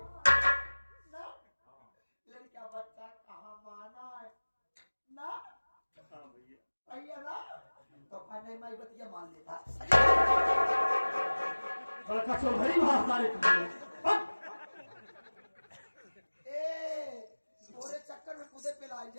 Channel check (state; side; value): inverted; both; correlation -1.00